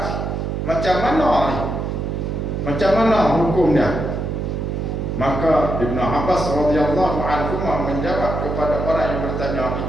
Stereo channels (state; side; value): noise; right; hum, 3 dB below the sound